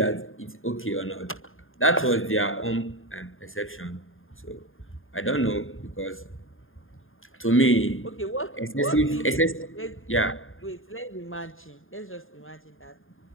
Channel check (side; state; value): right; late; 0.59 ms